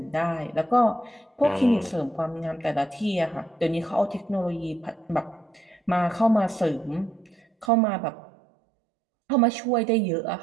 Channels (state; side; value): drops out; left; at 7.7 s